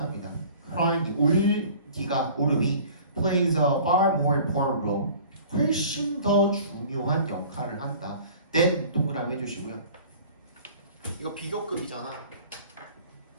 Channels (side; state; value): both; inverted; correlation -0.47